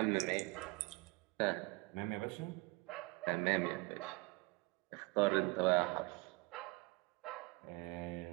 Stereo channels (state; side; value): quieter; left; 25.0 dB